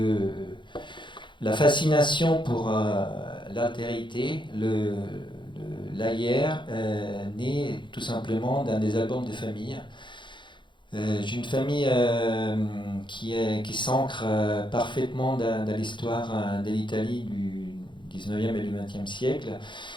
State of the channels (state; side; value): late; right; 0.23 ms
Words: la fascination pour l'altérité, l'ailleurs, naît tout simplement dans des albums de famille. J'ai une famille qui s'ancre parfaitement dans l'histoire de l'Italie du 19e et du 20e siècle.